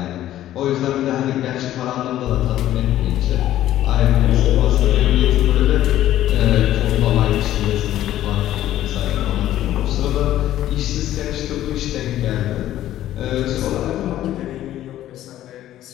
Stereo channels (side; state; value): right; quieter; 13.1 dB